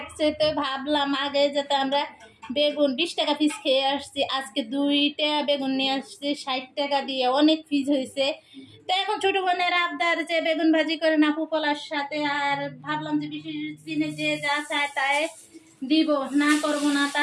তো ভাবলাম আগে যেতে আমরা বেগুন 20 টাকা পিস খেয়ে আসছি, আজকে 2টা বেগুন নিয়ে আসছি 60 টাকা দিয়ে, অনেক পিস হয়েছে। তো এখন ছোট বোনের আবদার যে বেগুন ভাজি করে না পোলার সাথে, আর ভাবলাম যে বিশেষ দিনে যে যা চায় তাই দিব, না করবো না,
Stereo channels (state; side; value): identical; both; correlation 1.00